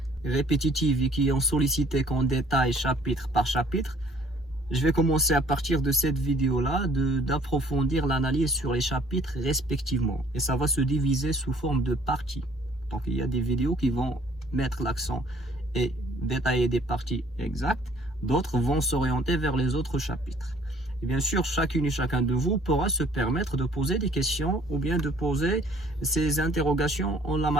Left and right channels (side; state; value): both; normal; correlation 0.58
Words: répétitives et qui ont sollicité qu'on détaille chapitre par chapitre, je vais commencer à partir de cette vidéo-là d'approfondir l'analyse sur les chapitres respectivement. Et ça va se diviser sous forme de parties. Donc il y a des vidéos qui vont mettre l'accent et détailler des parties exactes. D'autres vont s'orienter vers les autres chapitres. Et bien sûr, chacune et chacun de vous pourra se permettre de poser des questions ou bien de poser ses interrogations en la